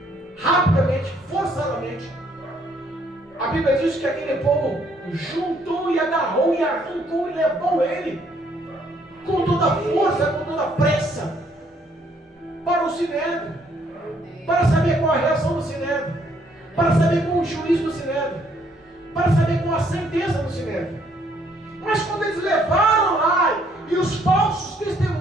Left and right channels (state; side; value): normal; both; correlation 0.67